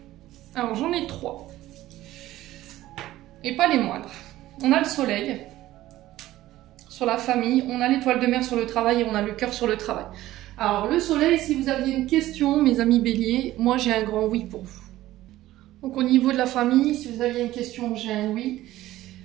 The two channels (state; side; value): quieter; left; 15.4 dB